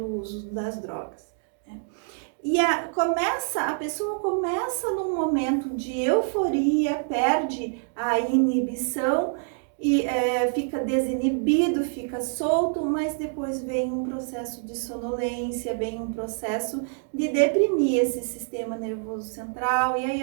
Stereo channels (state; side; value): silent; left; 61 dB below the other